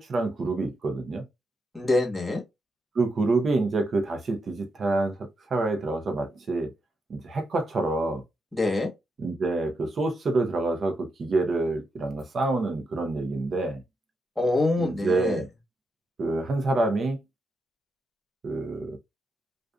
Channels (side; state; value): both; normal; correlation 0.84